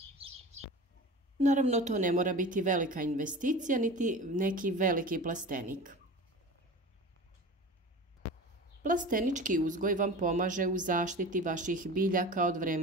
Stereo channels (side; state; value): both; normal; correlation 0.35